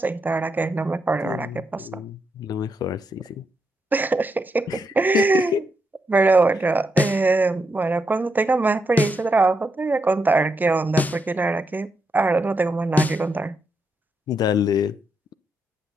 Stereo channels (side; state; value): both; normal; correlation 0.82